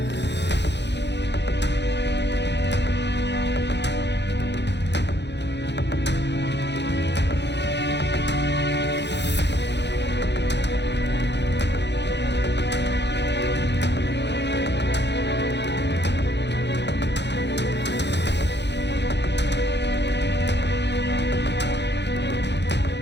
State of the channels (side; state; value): right; late; 0.50 ms